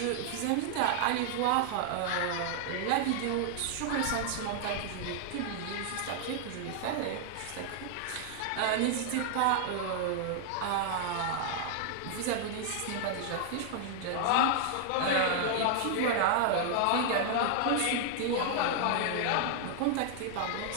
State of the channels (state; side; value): different; both; correlation 0.00